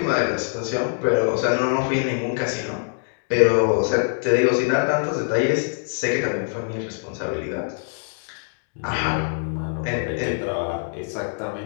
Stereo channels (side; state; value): right; silent; 63 dB below the other